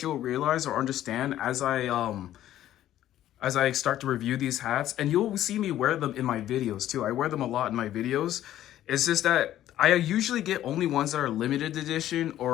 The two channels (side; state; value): right; quieter; 12.7 dB